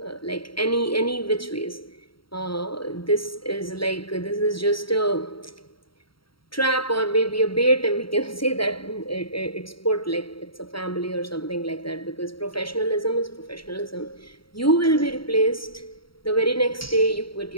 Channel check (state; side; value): late; right; 0.74 ms